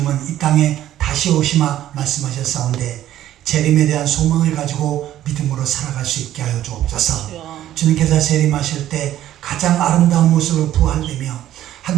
이 땅에 다시 오시마 말씀하셨사온데 재림에 대한 소망을 가지고 믿음으로 살아갈 수 있게 하여 주옵소서. 주님께서 재림하실 때 가장 아름다운 모습으로 부활되며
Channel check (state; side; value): quieter; left; 12.6 dB